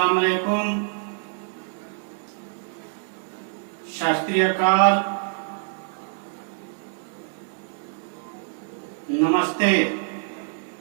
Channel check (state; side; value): silent; left; digital silence